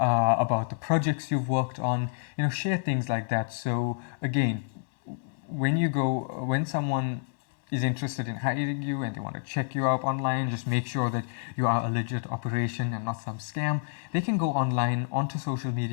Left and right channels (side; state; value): right; silent; 59 dB below the other